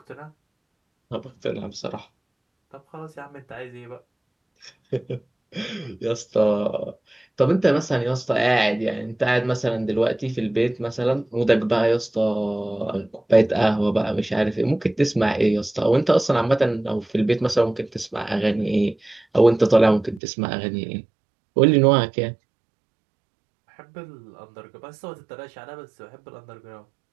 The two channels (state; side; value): drops out; left; at 20.2 s